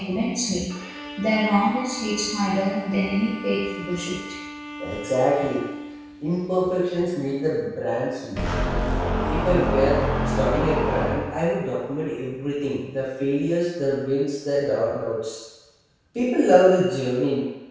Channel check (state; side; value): identical; both; correlation 1.00